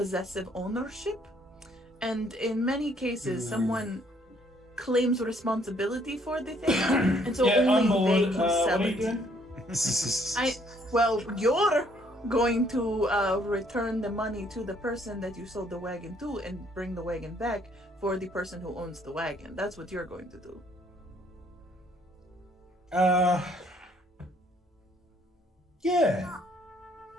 ownership. And in many cases, someone claims responsibility for the thing, and so only they can sell what are it. you doing? You're going to return the money to the person that you sold the wagon to and bring the wagon back for the person who owns the wagon. That's what you're going to do. Yeah.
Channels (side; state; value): both; normal; correlation 0.65